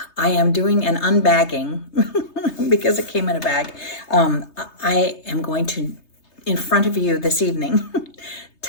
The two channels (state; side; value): late; right; 3.3 ms